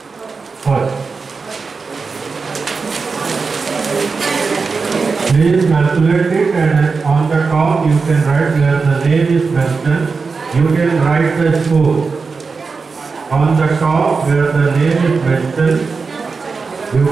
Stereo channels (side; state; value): left; quieter; 4.7 dB